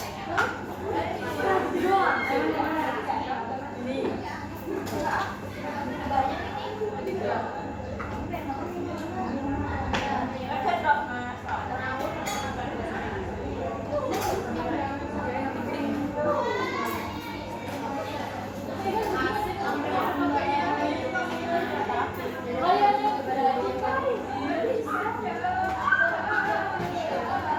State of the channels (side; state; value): both; identical; correlation 1.00